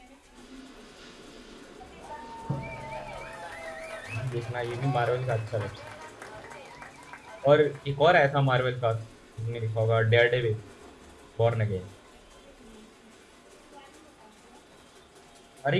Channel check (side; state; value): both; identical; correlation 1.00